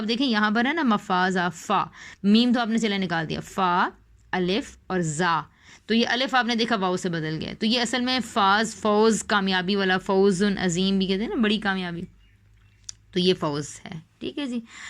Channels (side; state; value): both; identical; correlation 1.00